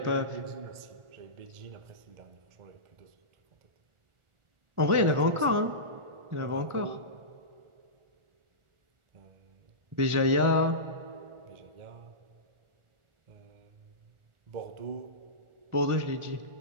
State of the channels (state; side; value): late; left; 1.4 ms